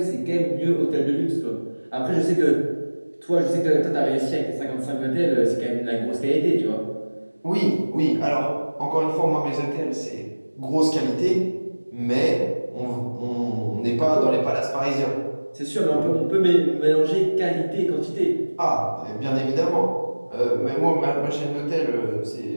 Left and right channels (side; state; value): both; inverted; correlation -1.00